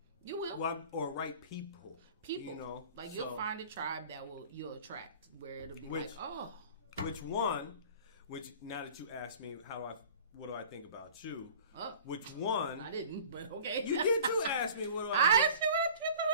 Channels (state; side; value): inverted; both; correlation -0.45